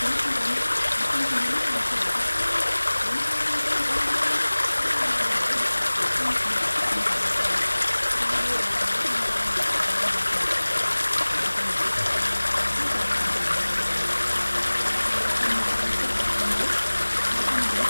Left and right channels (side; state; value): both; inverted; correlation -1.00